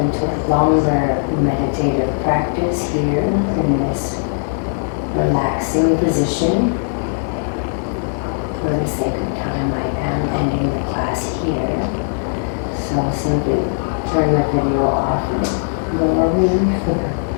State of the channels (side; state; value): right; silent; digital silence